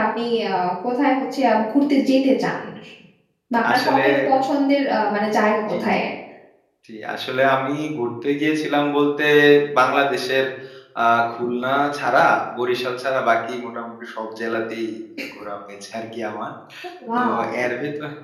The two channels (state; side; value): identical; both; correlation 1.00